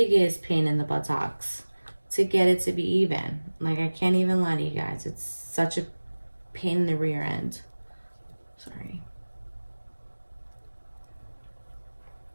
pain in the buttocks to get it to be even. Like, I can't even lie to you guys, it's such a pain in the rear end. Sorry.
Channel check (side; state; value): both; inverted; correlation -1.00